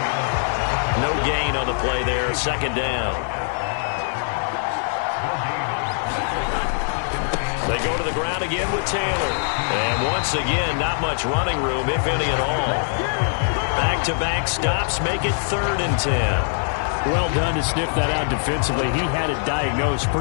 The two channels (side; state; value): right; silent; 56 dB below the other